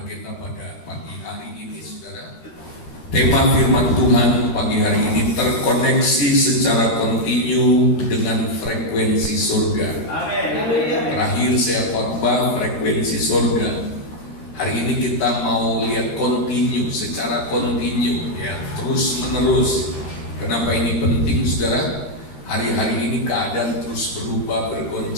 kita pada pagi hari ini, saudara. Tema firman Tuhan pagi hari ini terkoneksi secara kontinu dengan frekuensi surga. Terakhir saya khotbah frekuensi surga. Hari ini kita mau lihat kontinu, secara kontinu, ya, terus menerus. Kenapa ini penting, saudara? Hari-hari ini keadaan terus berubah,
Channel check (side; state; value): right; late; 13 ms